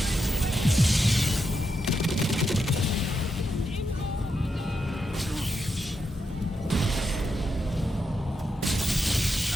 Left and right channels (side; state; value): both; normal; correlation 0.84